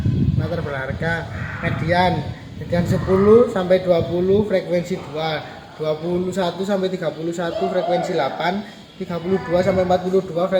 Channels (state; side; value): identical; both; correlation 1.00